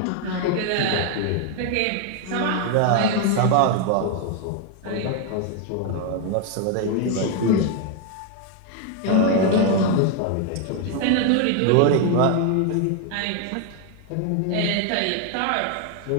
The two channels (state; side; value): different; both; correlation 0.01